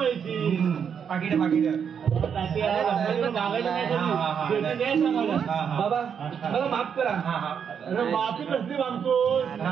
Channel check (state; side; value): quieter; left; 7.4 dB